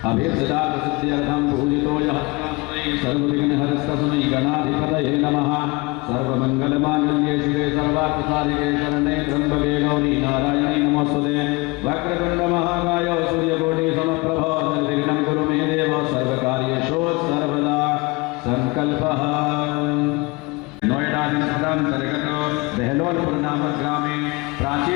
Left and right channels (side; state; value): right; quieter; 25.0 dB